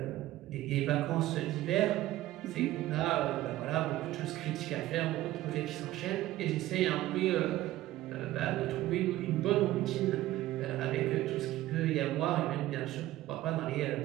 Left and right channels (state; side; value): quieter; left; 15.5 dB